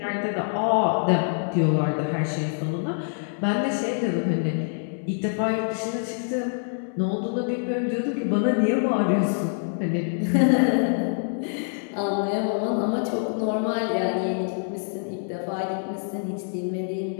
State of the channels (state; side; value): silent; right; 61 dB below the other